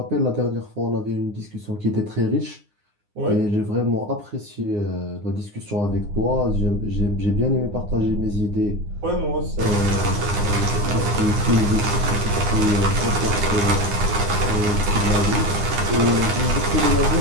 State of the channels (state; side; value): late; left; 9.7 ms